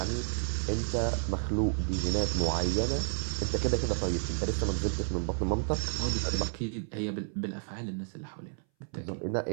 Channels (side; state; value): left; silent; 57 dB below the other